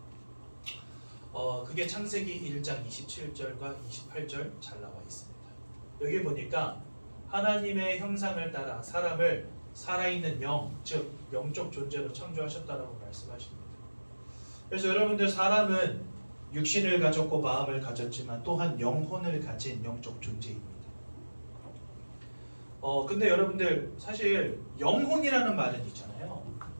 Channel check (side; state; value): both; inverted; correlation -1.00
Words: 그게 창세기 1장 27절과 28절 잘 나와 있습니다. 여기 보니까 하나님의 형상을 따라 사람을 살아있는 영, 즉 영적 존재로 창조하셨다라고 말씀하십니다. 그래서 여러분들 사람은 육신을 가졌고 마음을 가졌지만 또한 영혼을 가진 영적 존재입니다. 근데 여러분들 사실 영혼이라는 말은 있잖아요.